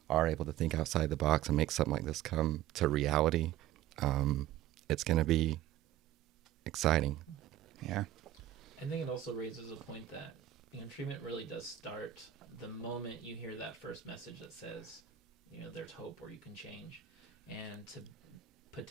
are able to think outside the box and make something like this come to reality. It's going to be exciting. Yeah. I think it also raises a point that, treatment really does start the moment you hear that first message that says, there's hope or you can change. And to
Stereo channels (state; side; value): quieter; left; 12.6 dB